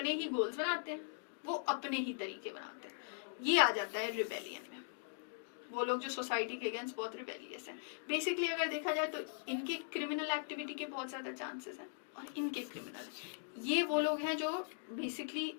ही गोल्स बनाते हैं, वो अपने ही तरीके बनाते हैं। ये आ जाता है रिबेलियन में। वो लोग जो सोसाइटी के अगेंस्ट बहुत रिबेलियस हैं। बेसिकली अगर देखा जाए तो इनके क्रिमिनल एक्टिविटी के बहुत ज़्यादा चांसेस हैं, और इनके क्रिमिनल, ये वो लोग हैं जो बेसिकली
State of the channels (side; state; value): right; silent; digital silence